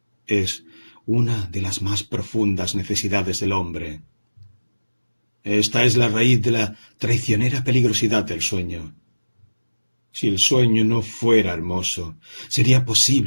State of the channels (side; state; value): both; inverted; correlation -1.00